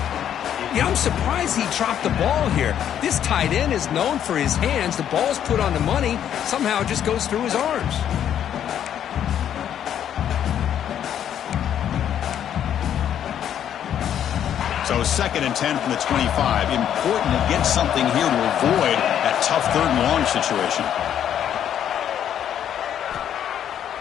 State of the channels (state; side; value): quieter; right; 9.8 dB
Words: Yeah, I'm surprised he dropped the ball here. This tight end is known for his hands. The ball's put on the money. Somehow it just goes through his arms. So 2nd and 10 from the 25. Important to get something here to avoid that tough third and long situation.